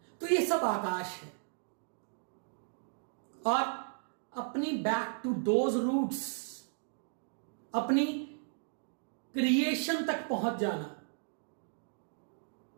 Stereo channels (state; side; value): silent; left; digital silence